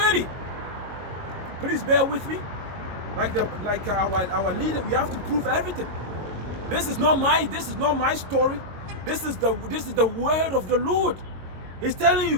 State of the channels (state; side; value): late; left; 22 ms